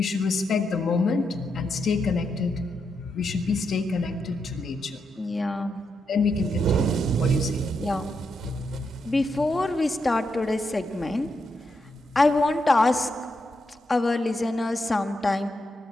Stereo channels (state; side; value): normal; both; correlation 0.83